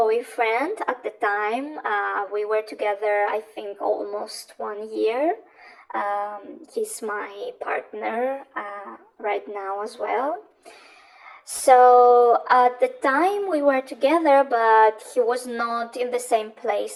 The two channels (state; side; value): identical; both; correlation 1.00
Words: at the time. We were together, I think, almost 1 year. He's my partner right now as well. So at the time we were together, but he was not in the same